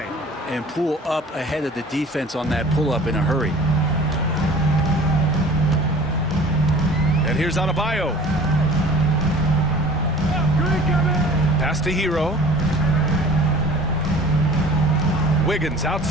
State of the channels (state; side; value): normal; both; correlation 0.46